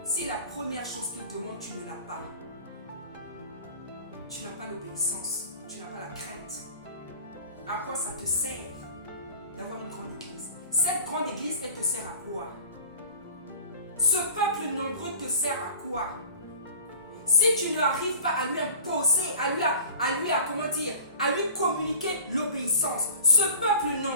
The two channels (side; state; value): both; inverted; correlation -0.43